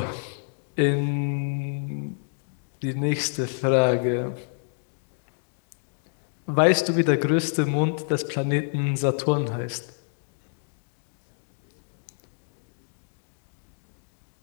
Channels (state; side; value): silent; right; digital silence